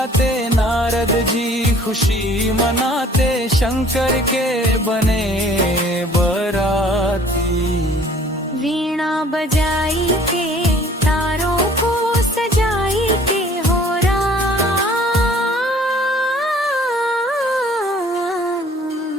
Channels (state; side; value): normal; both; correlation 0.54